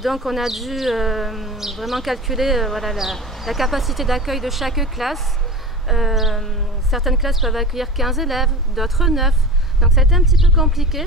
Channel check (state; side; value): normal; both; correlation 0.33